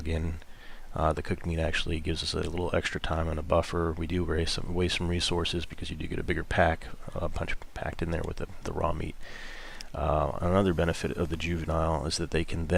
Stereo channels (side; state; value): both; identical; correlation 1.00